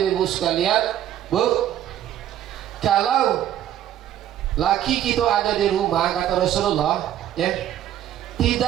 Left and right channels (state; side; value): quieter; left; 11.5 dB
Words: sekalian. Bu, kalau laki kita ada di rumah, kata Rasulullah, ya,